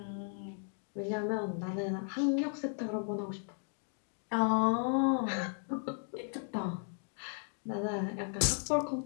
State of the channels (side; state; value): right; silent; 54 dB below the other